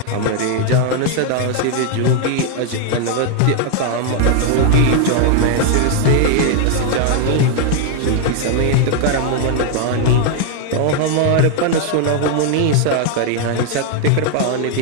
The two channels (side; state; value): both; different; correlation 0.00